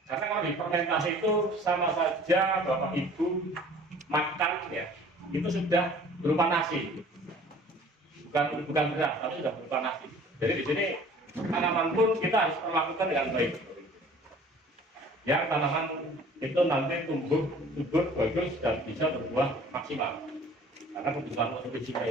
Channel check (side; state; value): both; normal; correlation 0.49